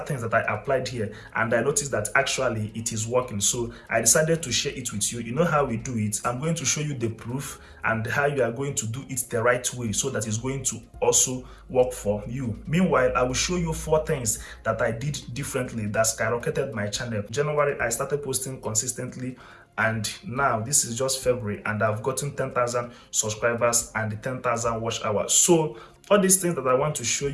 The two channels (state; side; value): identical; both; correlation 1.00